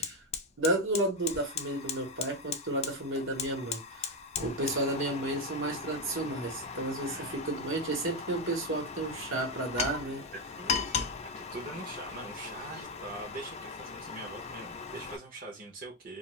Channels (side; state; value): both; normal; correlation 0.08